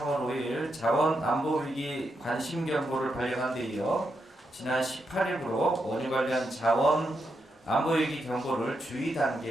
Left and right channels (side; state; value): both; normal; correlation 0.84